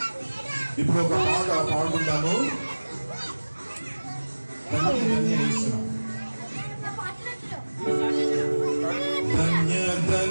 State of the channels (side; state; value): both; inverted; correlation -1.00